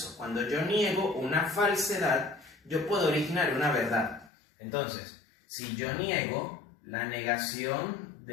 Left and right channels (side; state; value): right; drops out; at 4.3 s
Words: Cuando yo niego una falsedad, yo puedo originar una verdad. Entonces, si yo niego, la negación